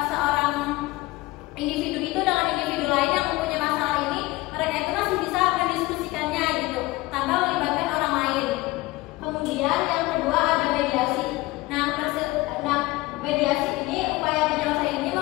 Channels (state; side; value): quieter; right; 20.2 dB